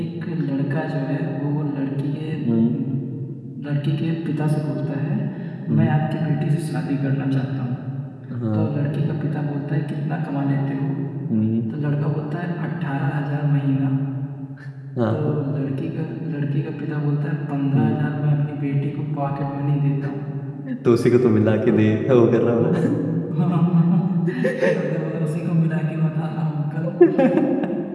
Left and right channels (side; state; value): both; identical; correlation 1.00